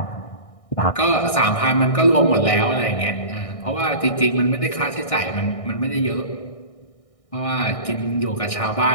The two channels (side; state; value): right; late; 1.6 ms